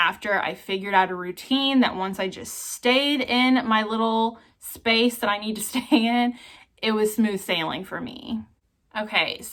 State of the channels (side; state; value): both; identical; correlation 1.00